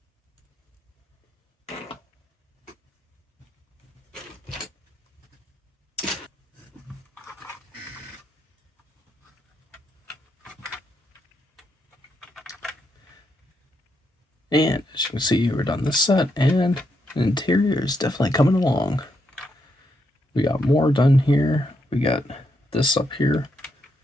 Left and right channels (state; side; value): normal; both; correlation 0.80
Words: And as you can see, we're done this set, and the interior is definitely coming along. We got more done here. We got this up here